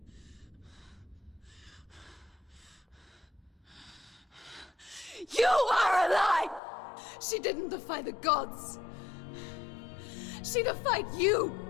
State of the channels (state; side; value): drops out; right; at 6.6 s